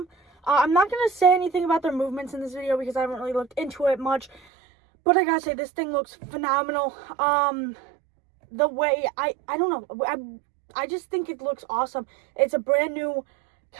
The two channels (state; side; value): drops out; left; at 4.4 s